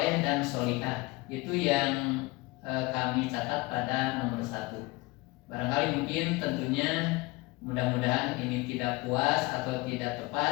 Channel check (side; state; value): right; quieter; 23.1 dB